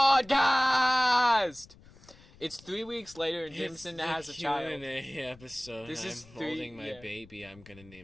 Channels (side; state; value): left; noise; rumble, 24 dB below the sound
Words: It's 3 weeks later and Jameson has a child. Q&A episode. This is I'm three- holding my yeah. baby. I'm gonna